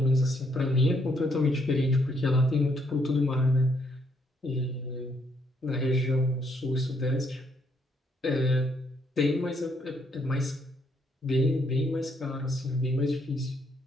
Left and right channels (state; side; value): normal; both; correlation 0.72